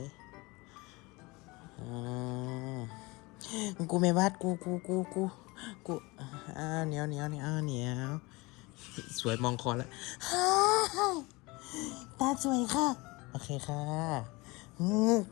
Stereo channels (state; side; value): quieter; right; 24.1 dB